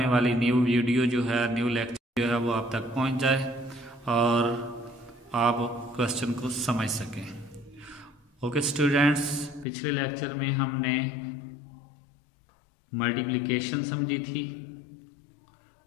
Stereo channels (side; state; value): right; drops out; at 9.7 s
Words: वाली न्यू वीडियो जो है, न्यू लेक्चर जो है वो आप तक पहुंच जाए और आप क्वेश्चन को समझ सकें। ओके स्टूडेंट्स, पिछले लेक्चर में हमने मल्टीप्लिकेशन समझी थी,